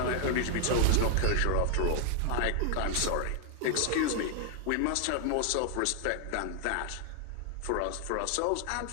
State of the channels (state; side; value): different; both; correlation 0.00